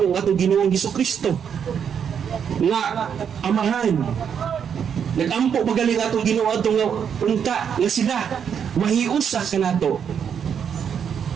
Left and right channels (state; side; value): quieter; left; 7.7 dB